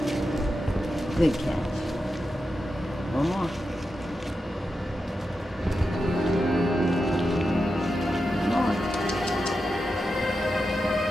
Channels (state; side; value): normal; both; correlation 0.89